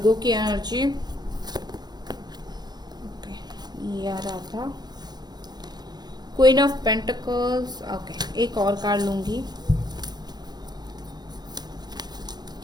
की एनर्जी। ओके, ये आ रहा था। क्वीन ऑफ पेंटिकल्स, ओके, एक और कार्ड लूंगी।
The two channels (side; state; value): left; late; 0.20 ms